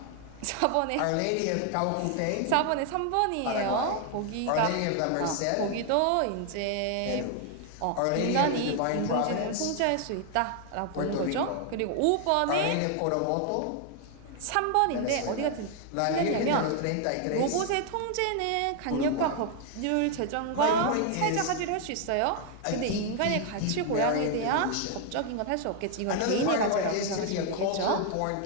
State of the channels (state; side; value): different; both; correlation 0.00